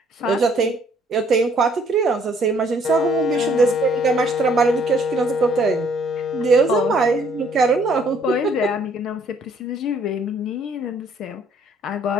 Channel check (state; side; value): normal; both; correlation 0.63